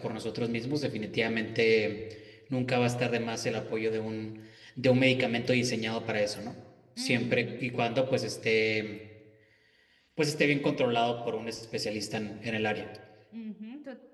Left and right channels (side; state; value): both; identical; correlation 1.00